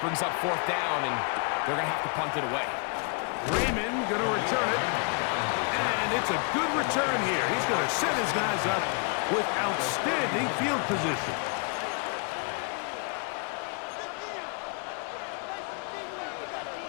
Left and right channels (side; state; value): right; quieter; 38.6 dB